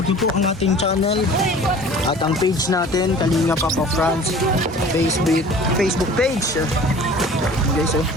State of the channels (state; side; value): normal; both; correlation 0.45